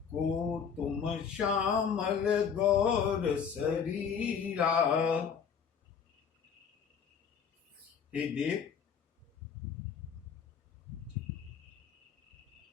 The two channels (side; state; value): right; quieter; 7.0 dB